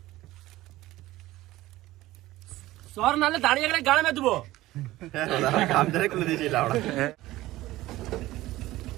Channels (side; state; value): left; quieter; 16.9 dB